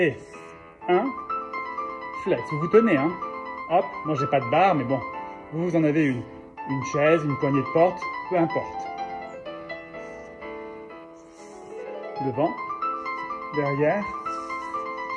1, flex. Vous vous tenez, hein. Hop, moi j'ai pas de barre, mais bon, vous en avez une. Une chaise, une poignée de porte, peu importe. Devant, derrière,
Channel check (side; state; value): both; identical; correlation 1.00